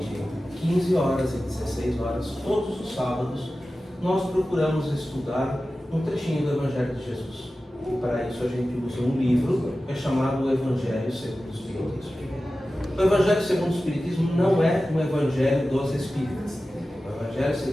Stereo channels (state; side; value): normal; both; correlation 0.95